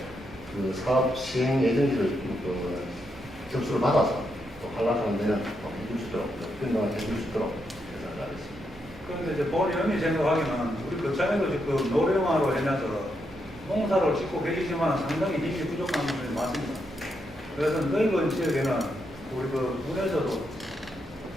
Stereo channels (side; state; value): both; normal; correlation 0.81